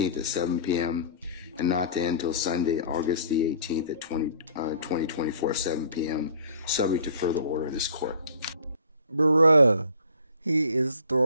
at 7 p.m. and not to end until Sunday, August the 18th at 2024, 7 p.m. subject to further order of this court. Bruh, he is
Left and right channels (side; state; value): both; inverted; correlation -0.50